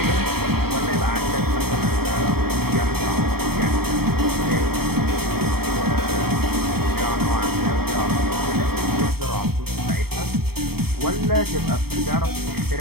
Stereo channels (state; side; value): late; left; 0.95 ms